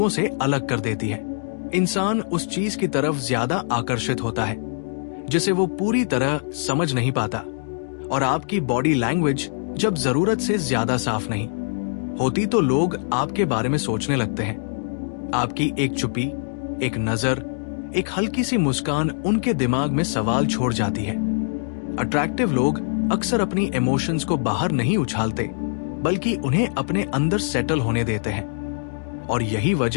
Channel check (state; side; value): silent; right; digital silence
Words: से अलग कर देती है। इंसान उस चीज की तरफ ज्यादा आकर्षित होता है जिसे वो पूरी तरह समझ नहीं पाता, और आपकी बॉडी लैंग्वेज जब जरूरत से ज्यादा साफ नहीं होती तो लोग आपके बारे में सोचने लगते हैं। आपकी एक चुप्पी, एक नजर, एक हल्की सी मुस्कान उनके दिमाग में सवाल छोड़ जाती है। अट्रैक्टिव लोग अक्सर अपनी इमोशंस को बाहर नहीं उछालते, बल्कि उन्हें अपने अंदर सेटल होने देते हैं, और यही